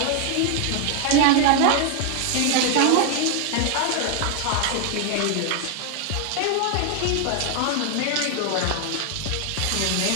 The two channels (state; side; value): different; both; correlation 0.01